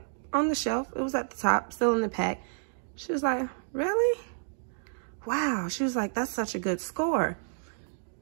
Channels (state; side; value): silent; left; digital silence